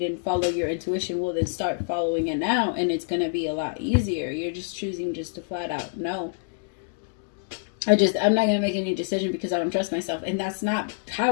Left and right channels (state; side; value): silent; right; digital silence